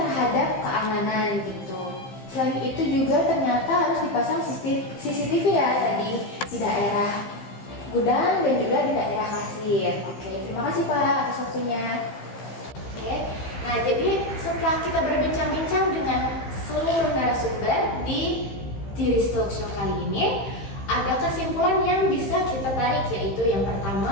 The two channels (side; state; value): right; late; 15 ms